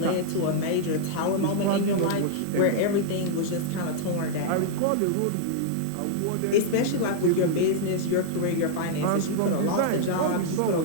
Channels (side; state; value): both; different; correlation -0.01